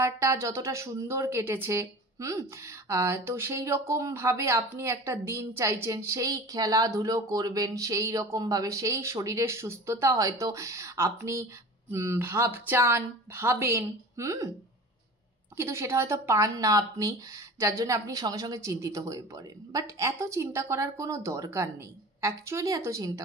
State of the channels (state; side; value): normal; both; correlation 0.37